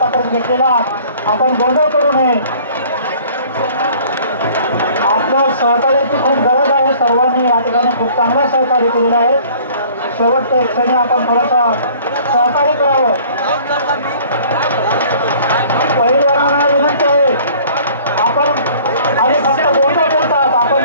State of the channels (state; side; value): inverted; both; correlation -0.52